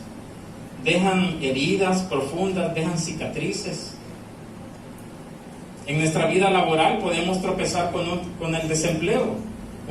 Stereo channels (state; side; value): identical; both; correlation 1.00